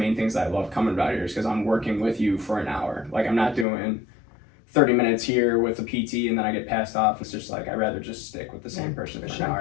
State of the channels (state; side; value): drops out; right; at 3.7 s